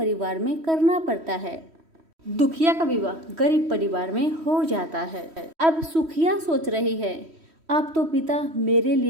में करना पड़ता है। दुखिया का विवाह गरीब परिवार में हो जाता है। अब सुखिया सोच रही है, अब तो पिता मेरे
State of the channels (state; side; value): late; left; 3.1 ms